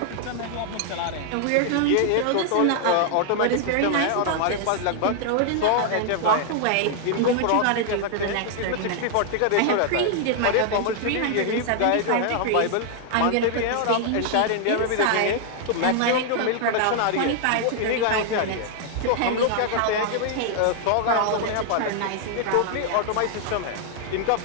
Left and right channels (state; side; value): different; both; correlation 0.00